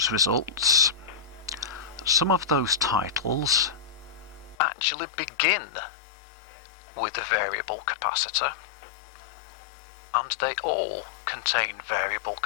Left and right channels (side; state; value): right; drops out; at 4.5 s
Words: results, some of those titles actually begin with a variable capacitor, and they all contain variable